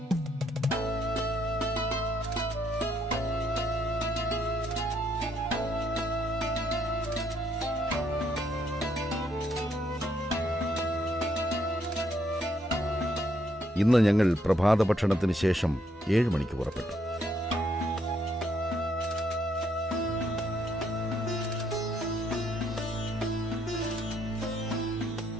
ഇന്ന് ഞങ്ങൾ പ്രഭാത ഭക്ഷണത്തിന് ശേഷം 7 മണിക്ക് പുറപ്പെട്ടു.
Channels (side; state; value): both; normal; correlation 0.72